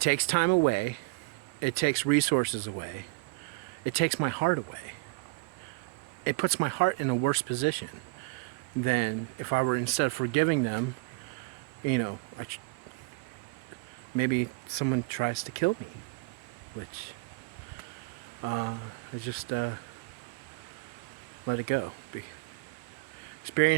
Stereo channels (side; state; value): left; quieter; 25.9 dB